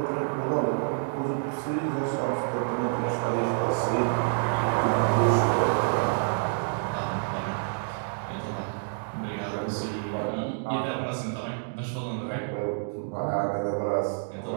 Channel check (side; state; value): left; silent; digital silence